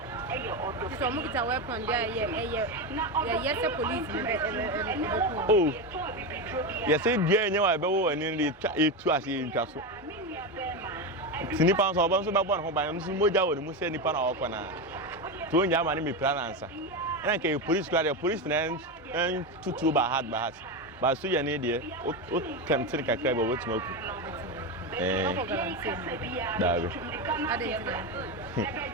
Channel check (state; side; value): normal; both; correlation 0.15